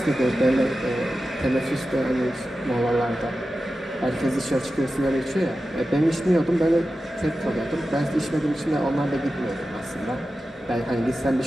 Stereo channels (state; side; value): normal; both; correlation 0.93